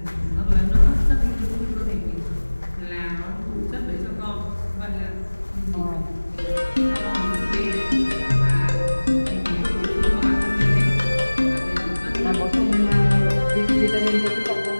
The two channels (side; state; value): both; inverted; correlation -1.00